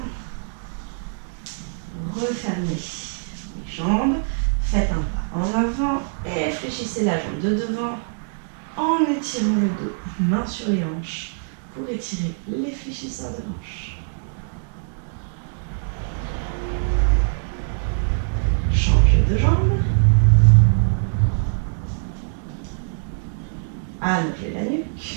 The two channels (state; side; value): silent; left; digital silence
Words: Refermez les jambes. Faites un pas en avant et fléchissez la jambe de devant en étirant le dos, main sur les hanches, pour étirer les fléchisseurs de hanches. Change de jambe. Allongez la